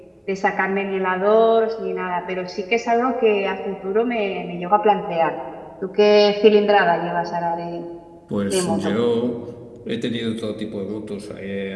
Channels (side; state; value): both; identical; correlation 1.00